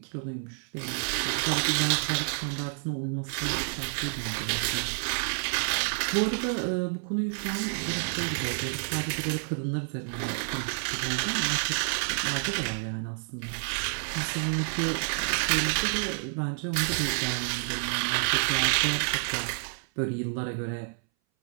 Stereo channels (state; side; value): silent; left; 59 dB below the other